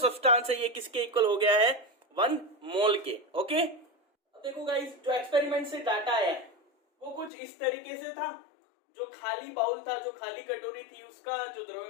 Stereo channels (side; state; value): right; drops out; at 7.3 s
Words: है ये किसके इक्वल हो गया है, 1 मोल के। ओके, अब देखो गाइस, जो एक्सपेरिमेंट से डाटा आया है वो कुछ इस तरीके से था। जो खाली बाउल था, जो खाली कटोरी थी, उसका जो